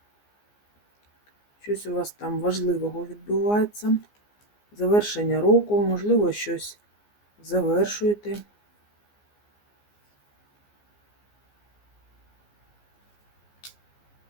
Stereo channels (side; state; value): right; late; 14 ms